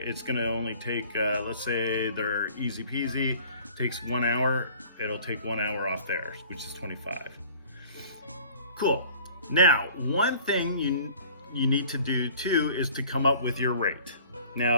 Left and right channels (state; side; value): inverted; both; correlation -0.50